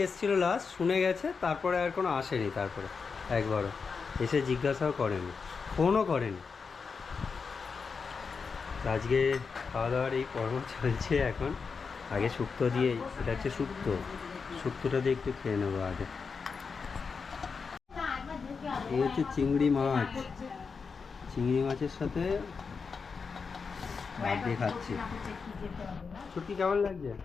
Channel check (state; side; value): quieter; right; 5.2 dB